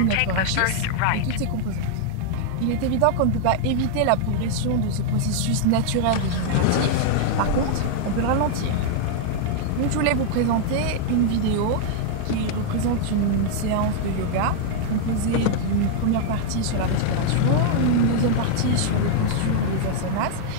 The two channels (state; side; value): different; both; correlation -0.01